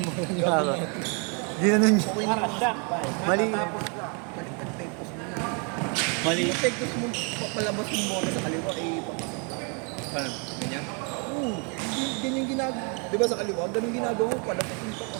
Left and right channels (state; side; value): quieter; left; 36.3 dB